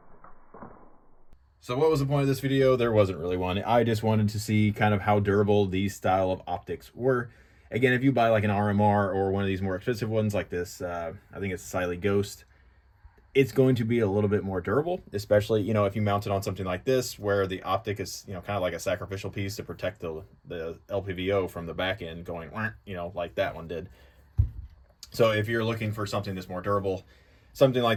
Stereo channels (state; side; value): identical; both; correlation 1.00